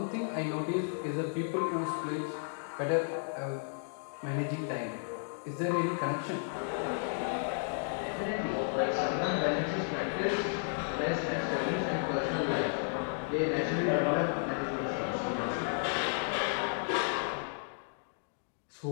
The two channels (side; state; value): right; silent; digital silence